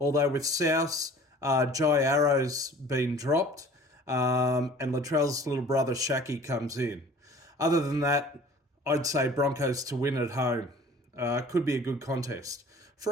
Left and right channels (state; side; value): normal; both; correlation 0.47